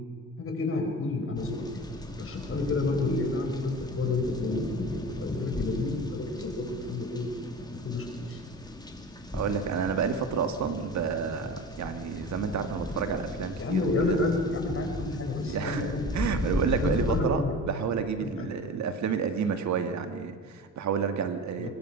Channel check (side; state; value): both; normal; correlation 0.33